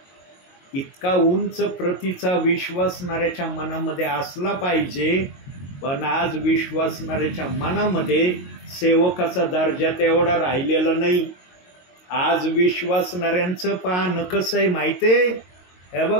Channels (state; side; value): late; right; 22 ms